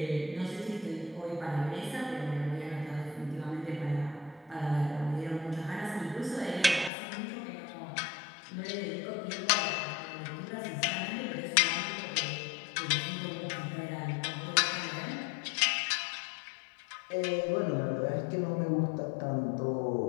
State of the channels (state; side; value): drops out; right; at 6.9 s